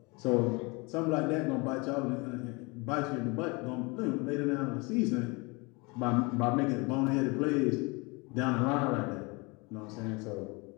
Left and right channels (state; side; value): quieter; right; 27.5 dB